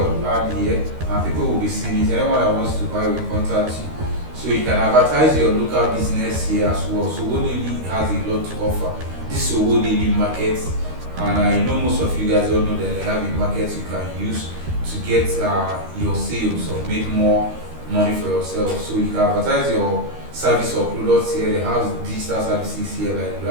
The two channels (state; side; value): late; left; 13 ms